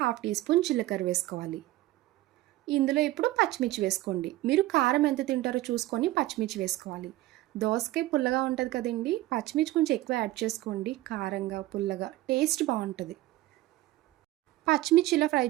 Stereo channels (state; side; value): quieter; left; 16.9 dB